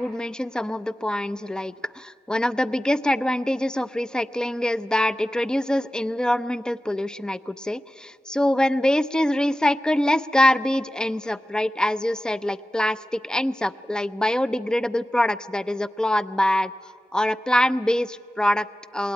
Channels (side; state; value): both; normal; correlation 0.94